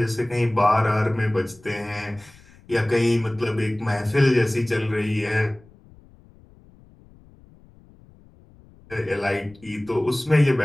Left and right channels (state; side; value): noise; left; rumble, 26 dB below the sound